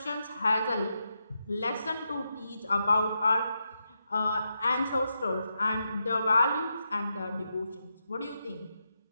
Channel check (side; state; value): both; inverted; correlation -0.85